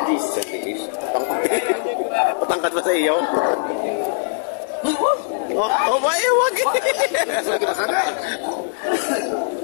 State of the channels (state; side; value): silent; right; digital silence